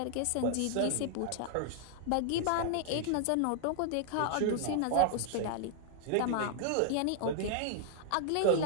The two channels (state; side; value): different; both; correlation 0.00